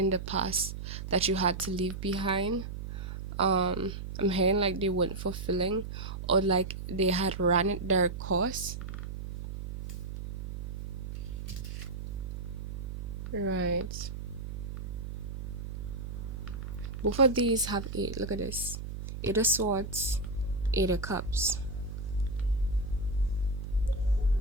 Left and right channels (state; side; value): noise; right; hum, 7 dB below the sound